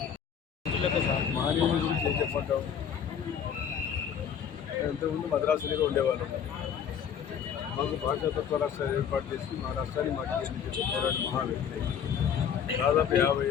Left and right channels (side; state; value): right; quieter; 8.0 dB